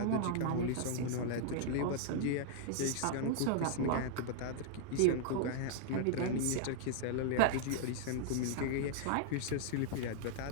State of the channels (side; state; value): both; different; correlation -0.01